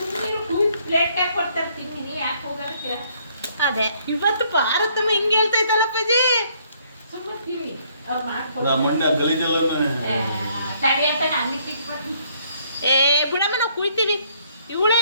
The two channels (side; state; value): both; inverted; correlation -0.66